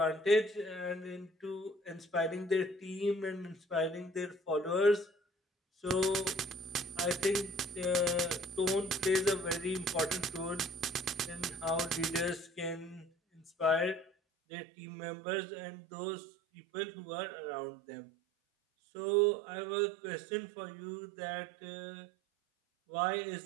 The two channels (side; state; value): left; drops out; at 14.1 s